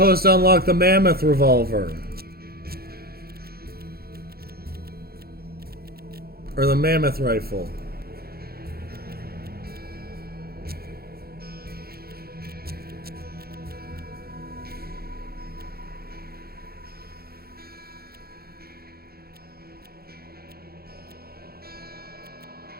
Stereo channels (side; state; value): left; late; 0.45 ms